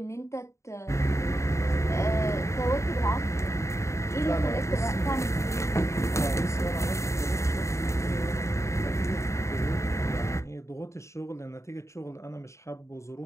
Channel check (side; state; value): right; late; 0.14 ms